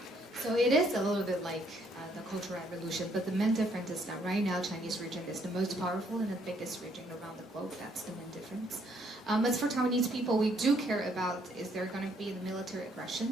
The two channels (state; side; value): normal; both; correlation 0.68